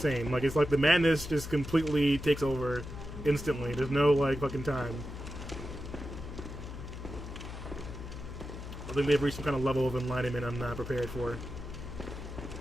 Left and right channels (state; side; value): noise; left; hum, 10 dB below the sound